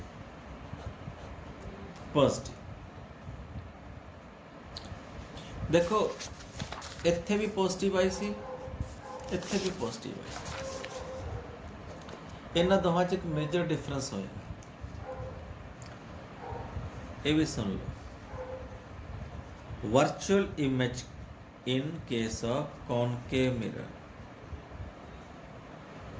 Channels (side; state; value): both; identical; correlation 1.00